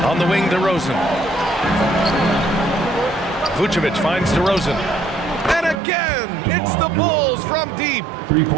On the wing, DeRozan. Vucevic finds DeRozan. And again, it's the Bulls from deep. 3 points.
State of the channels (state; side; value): drops out; left; at 5.8 s